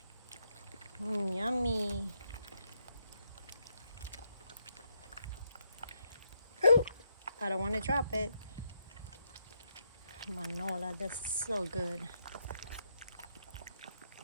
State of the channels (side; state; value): both; inverted; correlation -0.79